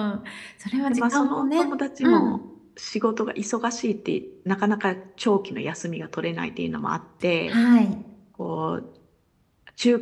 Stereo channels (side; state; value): both; identical; correlation 1.00